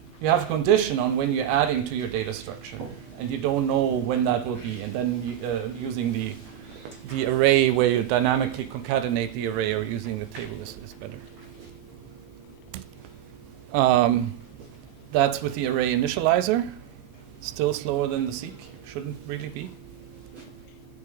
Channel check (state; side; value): quieter; left; 11.3 dB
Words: you have a condition on when you're adding to your data structure, and you don't know when that will be. And then using the array where you dynamically concatenate the array, or using the table is better. That's with the array initializer. Still slower than the seek. Shouldn't really be.